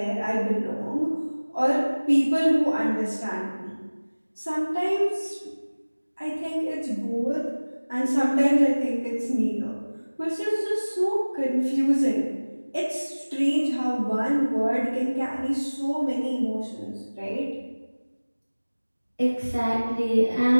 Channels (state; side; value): inverted; both; correlation -1.00